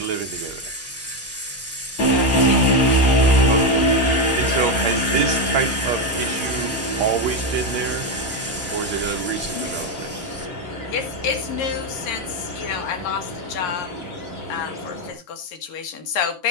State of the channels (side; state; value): both; normal; correlation 0.08